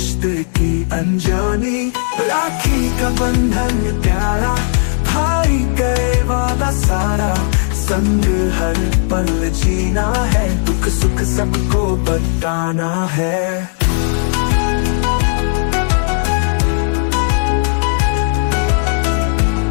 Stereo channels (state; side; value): silent; right; digital silence